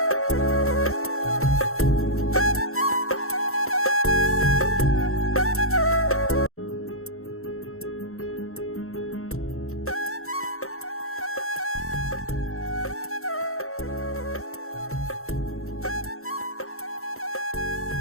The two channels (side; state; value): right; late; 0.63 ms